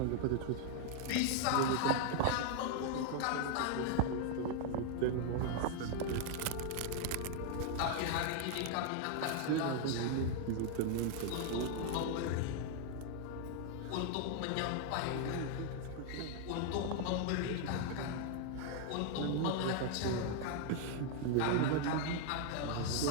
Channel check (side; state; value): both; different; correlation 0.00